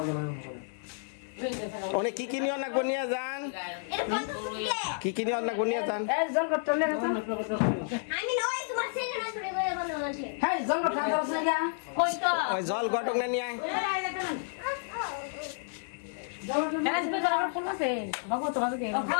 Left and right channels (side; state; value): right; silent; 57 dB below the other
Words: অনেক কি নিয়ে অনেক বনিয়া যান, কি নিয়ে অনেক বনিয়া যান। ওই জল গটক না নিয়ে আয়।